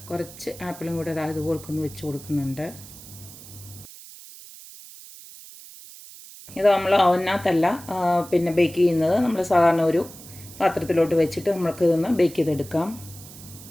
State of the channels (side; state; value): right; noise; hiss, 17 dB below the sound